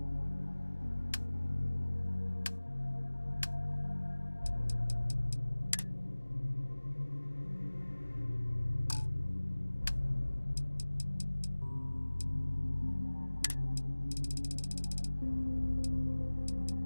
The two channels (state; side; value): inverted; both; correlation -1.00